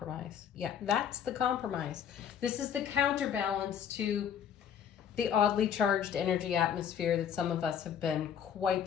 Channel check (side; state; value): right; quieter; 8.5 dB